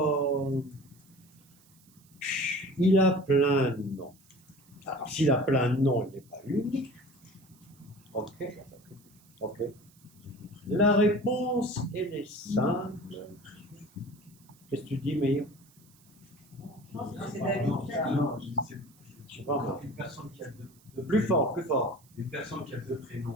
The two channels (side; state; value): right; noise; hiss, 29 dB below the sound